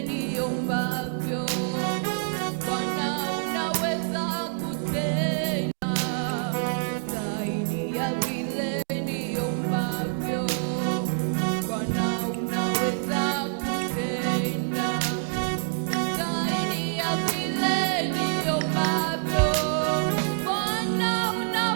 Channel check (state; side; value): silent; left; digital silence